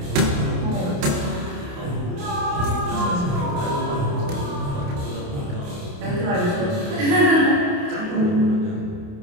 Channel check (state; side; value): late; left; 28 ms